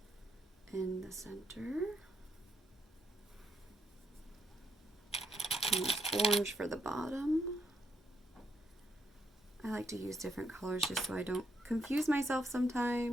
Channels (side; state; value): both; normal; correlation 0.77